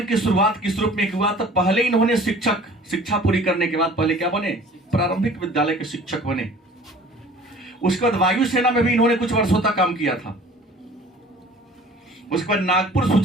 की शुरुआत किस रूप में हुआ, तो पहले इन्होंने शिक्षा पूरी करने के बाद पहले क्या बने, प्रारंभिक विद्यालय के शिक्षक बने। उसके बाद वायुसेना में भी इन्होंने कुछ वर्षों तक काम किया था। उसके बाद नागपुर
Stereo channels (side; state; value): both; normal; correlation 0.48